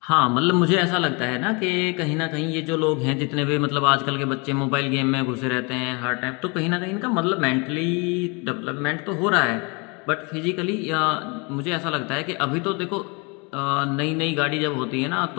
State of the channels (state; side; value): quieter; right; 30.3 dB